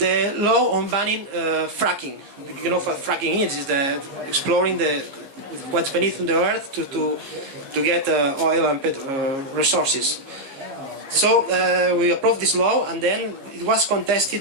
law on banning fracking. You know what fracking is the exploring what's beneath the earth to get oil and resources. So we approved this law, and then it was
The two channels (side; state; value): left; late; 15 ms